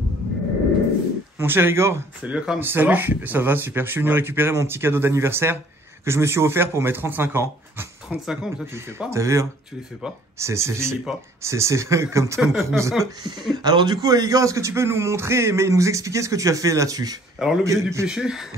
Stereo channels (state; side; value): normal; both; correlation 0.57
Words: Mon cher Igor. Salut Akram. Salut, ça va super. Je suis venu récupérer mon petit cadeau d'anniversaire que je me suis offert pour mes 35 ans. 35 ans, mais ça tu les fais pas. T'as vu hein? Tu les fais pas. C'est comme Tom Cruise. Alors du coup, Igor, est-ce que tu peux nous montrer, mais nous expliquer ce que tu as fait là-dessus? Alors l'objet du péché.